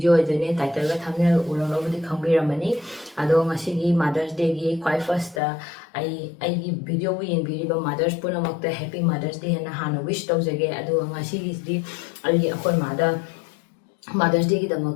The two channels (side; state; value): right; drops out; at 5.4 s